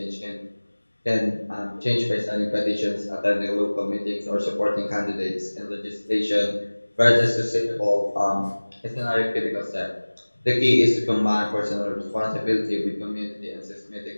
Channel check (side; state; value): both; inverted; correlation -1.00